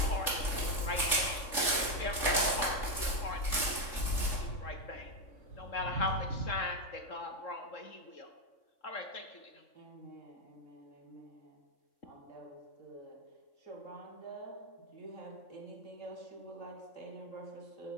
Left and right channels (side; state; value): right; late; 3.6 ms